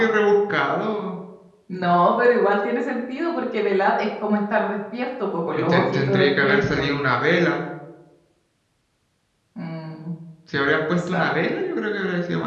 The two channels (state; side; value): identical; both; correlation 1.00